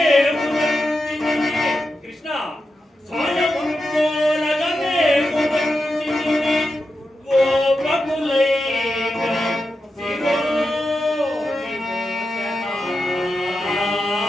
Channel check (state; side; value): normal; both; correlation 0.89